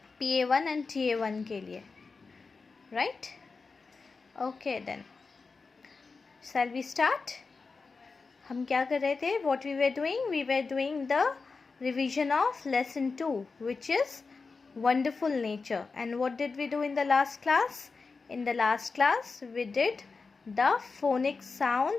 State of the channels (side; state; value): right; quieter; 4.4 dB